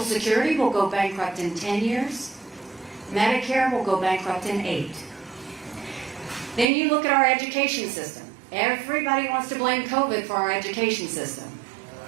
Security will go bankrupt in 10 years. Medicare will go bankrupt in 8. Then you look at our education system. Everybody wants to blame COVID for our education system.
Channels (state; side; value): drops out; left; at 6.7 s